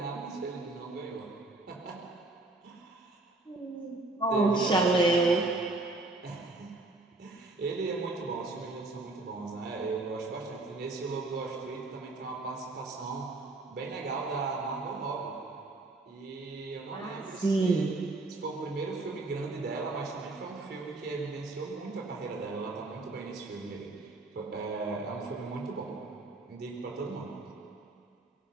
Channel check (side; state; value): left; quieter; 3.1 dB